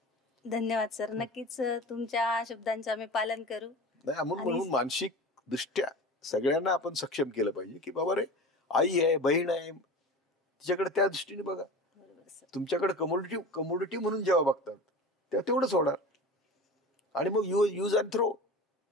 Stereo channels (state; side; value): normal; both; correlation 0.34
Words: धन्यवाद सर. नक्कीच तुमच्या शब्दांचं आम्ही पालन करू. नाही म्हणून मानसिक दृष्ट्या सगळ्यांना आपण सक्षम केलं पाहिजे की बाबा रे, आई आहे, बहीण आहे, तिच्याकडे त्या दृष्टीने बघा. तुमच्याकडे कमोडिटी म्हणून जेव्हा बघतात तेव्हा तेवढंच होणार. आणि मग यूज अँड थ्रो,